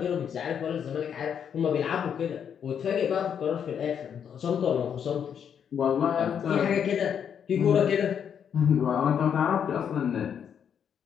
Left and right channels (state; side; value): quieter; right; 8.0 dB